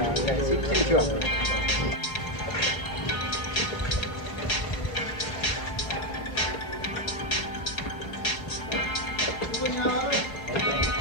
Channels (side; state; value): right; late; 4.7 ms